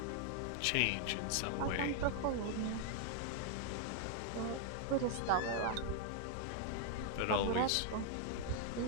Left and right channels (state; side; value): different; both; correlation 0.00